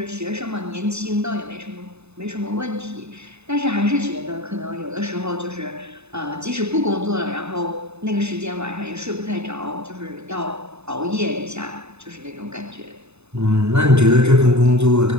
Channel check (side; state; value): left; late; 0.81 ms